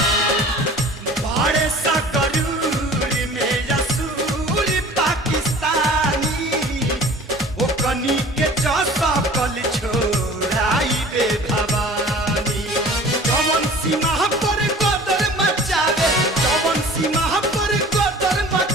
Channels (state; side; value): normal; both; correlation 0.45